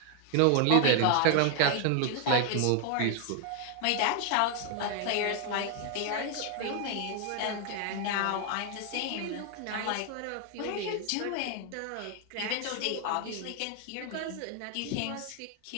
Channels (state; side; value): different; both; correlation 0.00